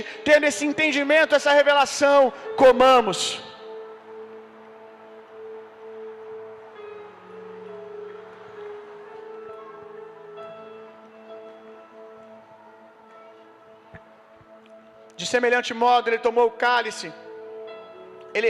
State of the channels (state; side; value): identical; both; correlation 1.00